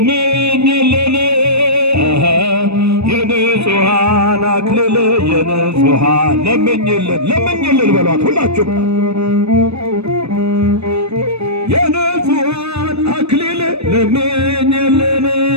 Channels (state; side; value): late; left; 0.79 ms